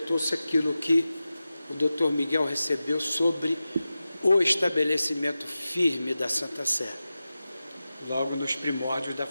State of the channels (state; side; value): inverted; both; correlation -0.94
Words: aquilo que o Dr. Miguel recebeu sobre o estabelecimento firme da Santa Sé, logo nos primórdios da